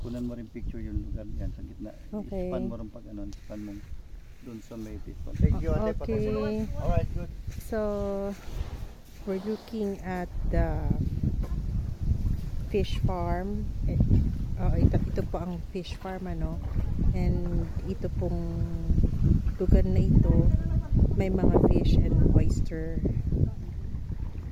Kunan mo rin picture yung lugar yan sa gitna. Okay. Span mo rin pag ano, span mo dun sa may pito. Thank you, ate. Okay. Alright, good. So, we're looking at the fish farm. Ito po ang fish farm, ano. And ito pong lugar na ito, may mga fish and oyster.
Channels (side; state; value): both; identical; correlation 1.00